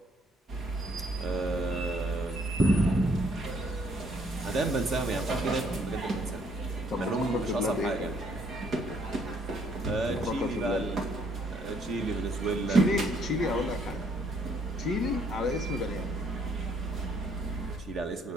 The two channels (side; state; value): both; normal; correlation 0.66